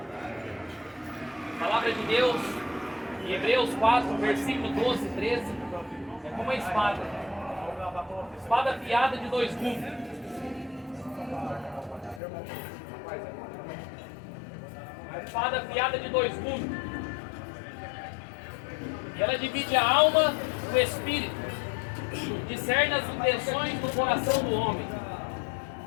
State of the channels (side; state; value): right; drops out; at 12.2 s